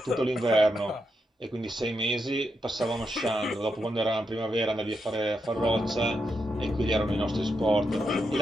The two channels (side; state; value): both; normal; correlation 0.83